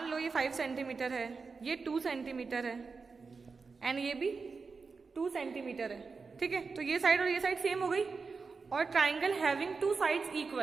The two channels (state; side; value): quieter; left; 4.7 dB